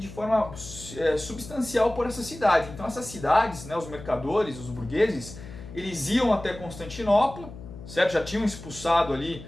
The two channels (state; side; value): noise; left; hum, 14 dB below the sound